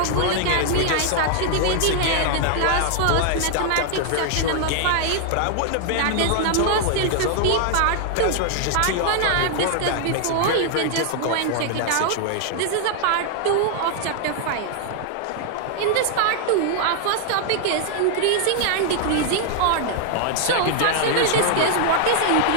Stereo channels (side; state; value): both; different; correlation 0.00